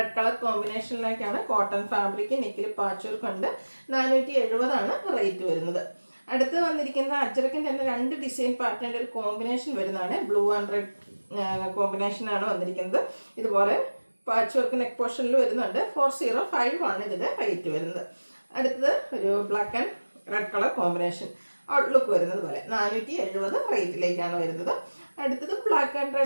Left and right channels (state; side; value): inverted; both; correlation -1.00